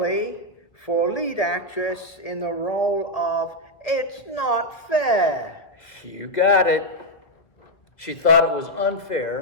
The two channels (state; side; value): late; right; 1.6 ms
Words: for lead actress in the role of It's Not Fair. You got it. She thought it was